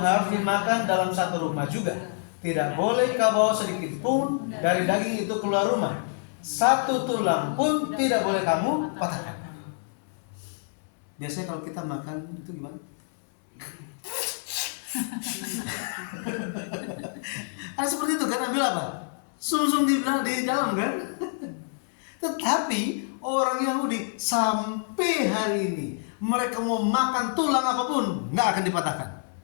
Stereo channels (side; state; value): right; silent; 60 dB below the other